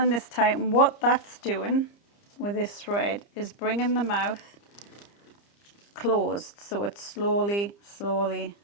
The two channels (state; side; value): late; right; 30 ms